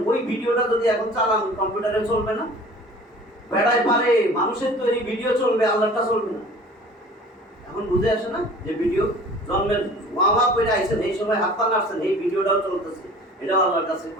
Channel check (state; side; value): normal; both; correlation 0.45